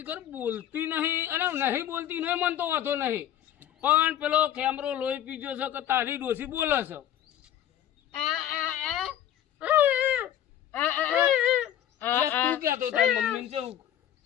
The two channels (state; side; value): quieter; right; 11.1 dB